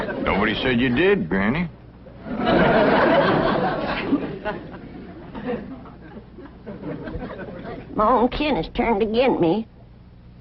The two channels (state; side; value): identical; both; correlation 1.00